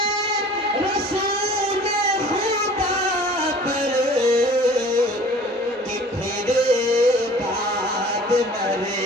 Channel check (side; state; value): both; normal; correlation 0.47